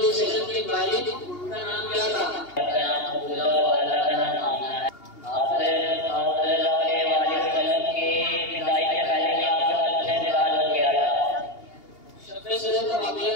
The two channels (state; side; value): late; right; 2.8 ms